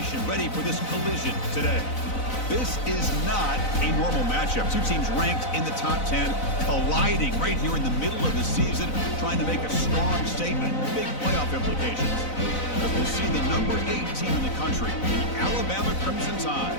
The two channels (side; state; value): right; late; 4.0 ms